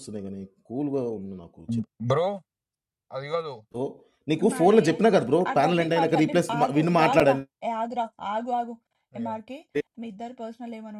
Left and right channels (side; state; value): both; identical; correlation 1.00